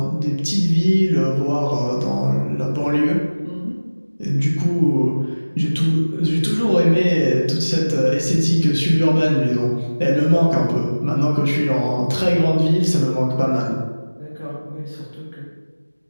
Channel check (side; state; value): both; inverted; correlation -1.00